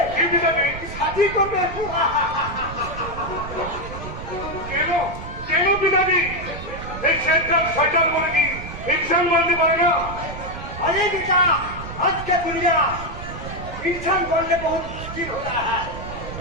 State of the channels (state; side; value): noise; right; rumble, 10 dB below the sound